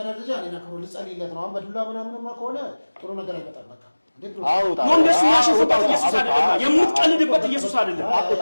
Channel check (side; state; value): both; inverted; correlation -1.00